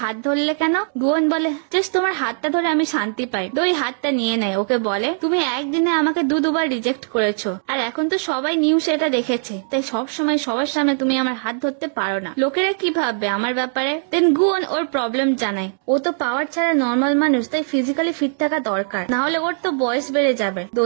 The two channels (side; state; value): left; silent; digital silence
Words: হাত ধরলে কেন? গুয়ন বলে, জাস্ট তোমার হাতটা ধরে আমি শান্তি পাই। দহি হাতটা নিয়ে নেয়। ওকে বলে, তুমি একদিনে আমাকে দুবার রিজেক্ট করেছো, আর এখন তো সবাই নিউজে এটা দেখেছে, তাই সব সময় সবার সামনে তুমি আমার হাত ধরতে পারো না। লোকেরা কি ভাববে আমার ব্যাপারে? দেন গুয়ন ওর প্রবলেম জানায়। ও তো পাওয়ার ছাড়া নর্মাল মানুষ, তাই ফিজিক্যালি ফিট থাকা দরকার, না হলে ওর তো বয়স বেড়ে যাবে।